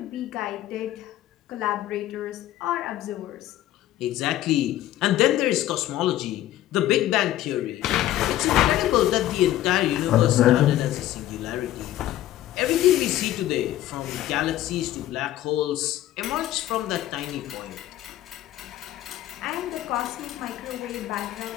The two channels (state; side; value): quieter; right; 13.7 dB